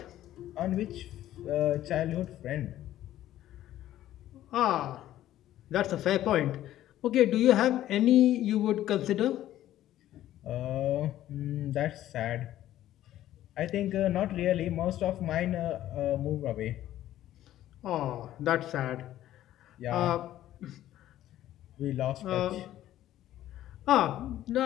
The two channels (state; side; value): quieter; right; 13.2 dB